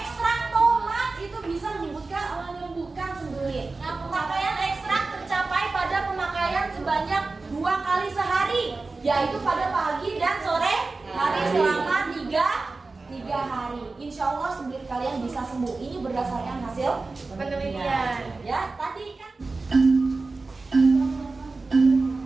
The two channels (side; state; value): left; quieter; 3.7 dB